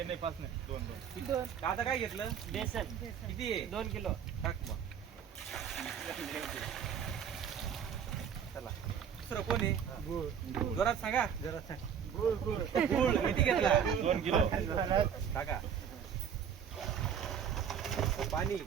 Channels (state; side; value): quieter; left; 8.0 dB